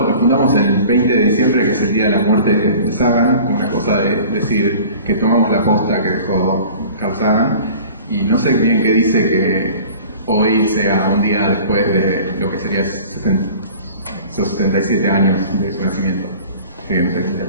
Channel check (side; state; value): both; inverted; correlation -0.44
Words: fundamos el 20 de diciembre, que es el día de la muerte de Sagan, como una cosa de decir que tomamos la posta que dejó Carl Sagan. Y no sé bien qué dice que hoy sea un día después de lo que sería 77 años de su nacimiento. Así que no sé,